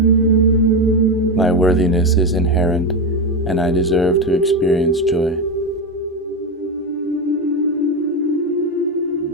My worthiness is inherent, and I deserve to experience joy.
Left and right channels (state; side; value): normal; both; correlation 0.13